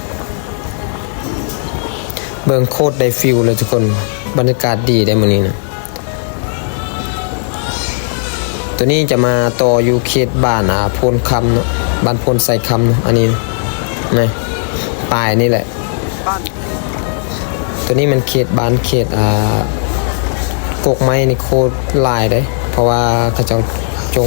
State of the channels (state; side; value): silent; right; digital silence